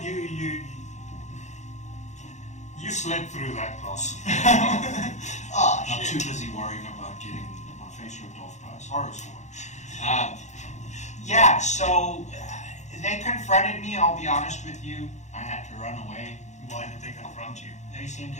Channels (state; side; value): late; right; 0.34 ms